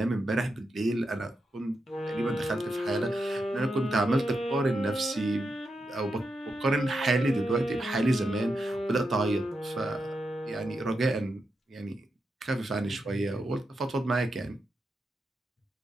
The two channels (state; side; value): normal; both; correlation 0.86